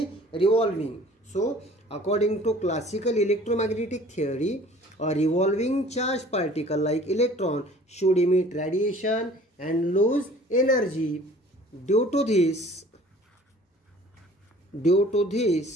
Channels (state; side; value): normal; both; correlation 0.50